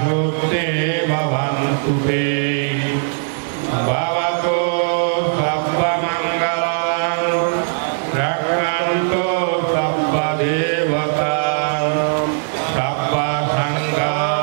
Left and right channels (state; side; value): silent; left; 67 dB below the other